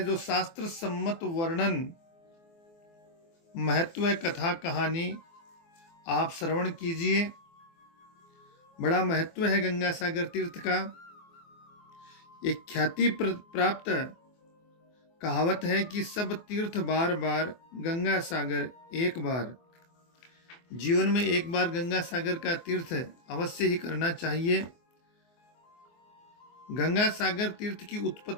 शास्त्र सम्मत वर्णन, महत्व कथा कहानी आप श्रवण कीजिए। बड़ा महत्व है गंगा सागर तीर्थ का। एक ख्याति प्राप्त कहावत है कि सब तीर्थ बार बार, गंगा सागर एक बार। जीवन में एक बार गंगा सागर का तीर्थ अवश्य ही करना चाहिए। गंगा सागर तीर्थ की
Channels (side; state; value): right; late; 24 ms